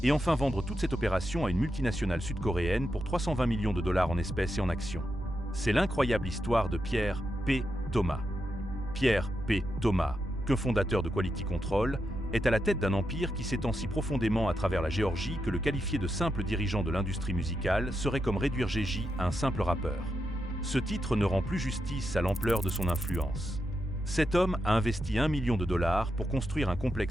et enfin vendre toute cette opération à une multinationale sud-coréenne pour 320 millions de dollars en espèces et en actions. C'est l'incroyable histoire de Pierre P. Thomas. Pierre P. Thomas, cofondateur de Quality Control, est à la tête d'un empire qui s'étend si profondément à travers la Géorgie que le qualifier de simple dirigeant de l'industrie musicale serait comme réduire Gigi à un simple rappeur. Ce titre ne rend plus justice à l'ampleur de son influence. Cet homme a investi 1 million de dollars pour construire un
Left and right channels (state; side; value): noise; right; hum, 12 dB below the sound